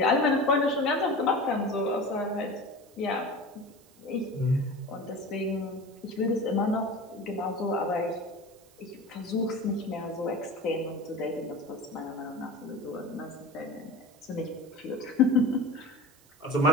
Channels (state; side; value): noise; right; hiss, 28 dB below the sound